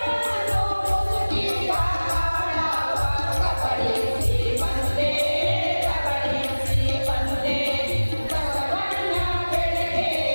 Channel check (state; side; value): inverted; both; correlation -1.00